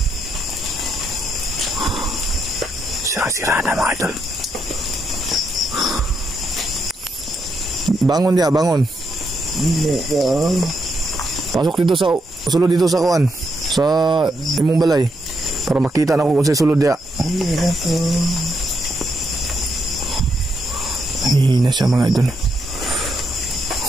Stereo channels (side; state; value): both; normal; correlation 0.80